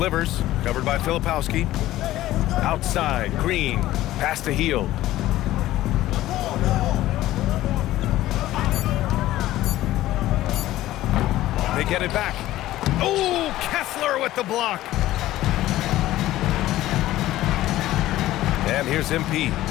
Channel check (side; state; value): right; quieter; 15.2 dB